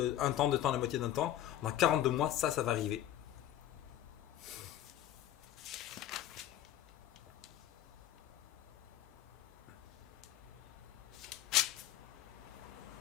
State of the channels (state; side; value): quieter; right; 12.2 dB